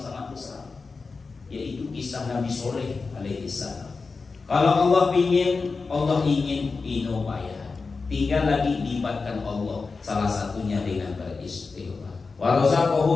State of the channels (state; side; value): quieter; right; 4.4 dB